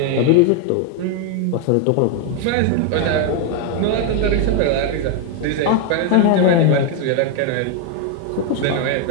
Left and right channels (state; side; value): different; both; correlation 0.01